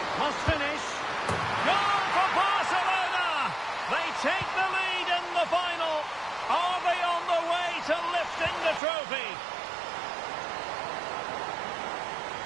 Must finish. Goal for Barcelona! They take the lead in the final. Are they on the way to lifting the trophy?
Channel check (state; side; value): drops out; left; at 8.8 s